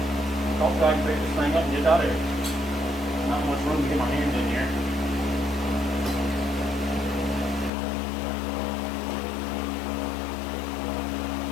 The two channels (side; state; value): right; drops out; at 7.7 s